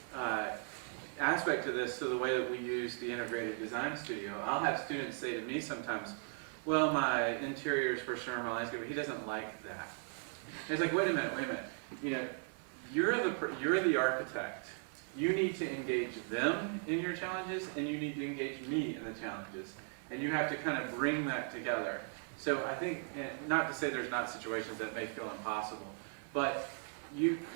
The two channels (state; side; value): silent; left; 53 dB below the other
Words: aspect to this, to the way that we use the integrated design studio. I'll have students say to me sometimes, well, my interiors for sure, my landscape, he doesn't like that. And it's like, wait a minute. You know, you're the architect. You need to engage them in your challenges, and you need to engage me in the challenges. And you have to kind of bring that together. So I think, not to say there's not situations that may feel impossible, but